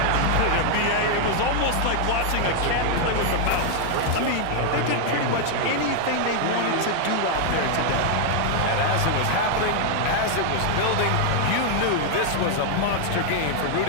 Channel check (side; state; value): both; different; correlation 0.00